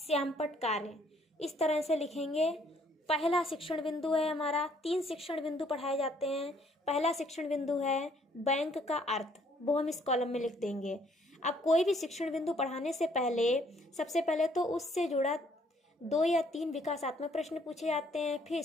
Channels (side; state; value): both; normal; correlation 0.64